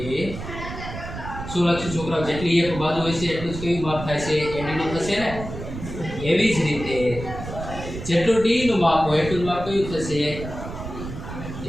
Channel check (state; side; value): noise; right; rumble, 9 dB below the sound